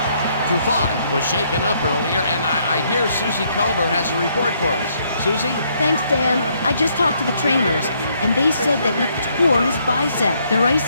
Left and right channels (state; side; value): inverted; both; correlation -0.70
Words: Trufant was shaken up earlier, and I hear Susie Culber has a report for us. Susie? Thanks, Dan. I just talked to the trainers, and they said that he tore his bicep. They're